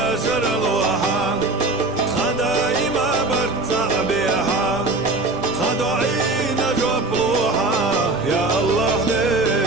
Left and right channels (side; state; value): left; quieter; 3.2 dB